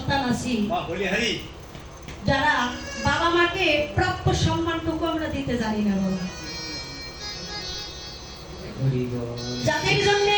আছি, যারা বাবা মাকে প্রাপ্য সম্মানটুকু আমরা দিতে জানি না বাবা। যাদের জন্য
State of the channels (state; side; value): identical; both; correlation 1.00